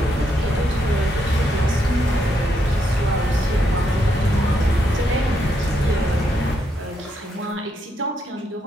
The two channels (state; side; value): normal; both; correlation 0.78